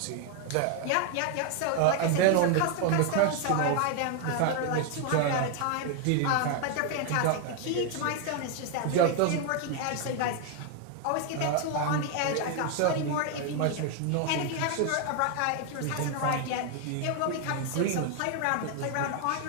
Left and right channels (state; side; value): different; both; correlation 0.01